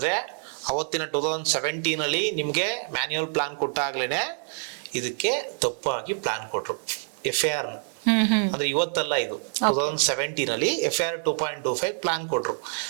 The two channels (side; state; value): left; silent; 61 dB below the other